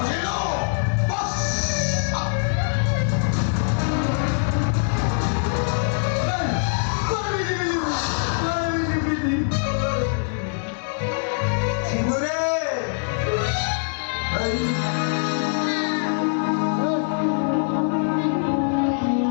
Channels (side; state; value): right; silent; digital silence